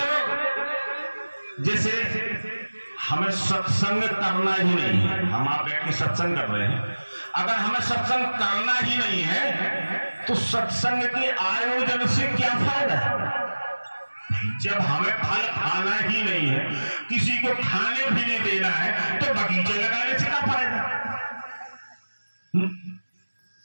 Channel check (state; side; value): inverted; both; correlation -1.00